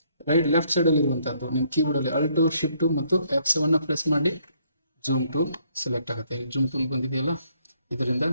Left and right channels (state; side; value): inverted; both; correlation -0.68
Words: ಲೆಫ್ಟ್ ಸೈಡಲ್ಲಿ ಇರುವಂಥದ್ದು ನಿಮ್ಮ ಕೀಬೋರ್ಡಲ್ಲಿ Alt Shift ಮತ್ತು F7 ಪ್ರೆಸ್ ಮಾಡಿ ಝೂಮ್ ಟೂಲ್ ಸೆಲೆಕ್ಟ್ ಆಗುತ್ತೆ. ಝೂಮ್ ಟೂಲ್ ಬಂದಿದೆಯಲ್ಲ, ಇದರಿಂದ